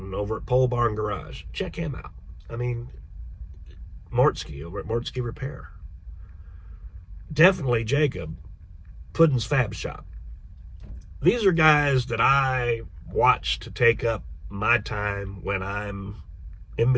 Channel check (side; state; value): both; identical; correlation 1.00